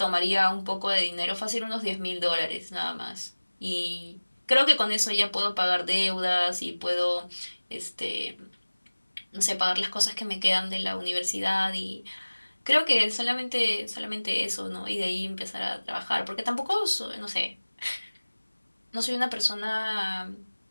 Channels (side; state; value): both; inverted; correlation -1.00